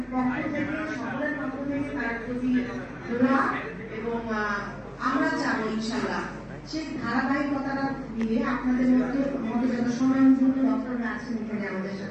পক্ষ থেকে সকলের পক্ষ থেকে তার প্রতি দোয়া এবং আমরা চাবো ইনশাআল্লাহ সেই ধারাবাহিকতাটা দিয়ে আপনাদের মধ্যে আমাদের যত সময়মূল্য ডক্টররা আছেন এখানে আমাদের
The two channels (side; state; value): both; identical; correlation 1.00